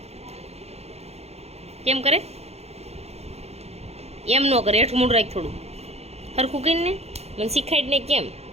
કેમ કરે? એમ ન કરે, હેઠું મોઢું રાખ થોડું હરખું કરીને મને શીખાડી ને કેમ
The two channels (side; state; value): left; late; 0.31 ms